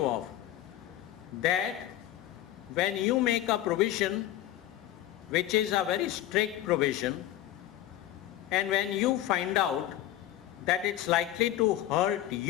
of that when you make a provision which is a very strict provision, and when you find out that it's likely to hurt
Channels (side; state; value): right; quieter; 13.4 dB